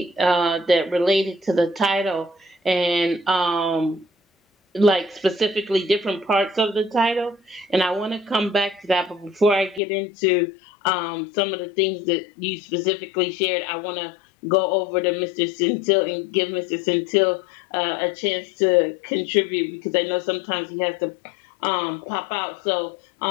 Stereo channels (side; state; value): right; drops out; at 9.8 s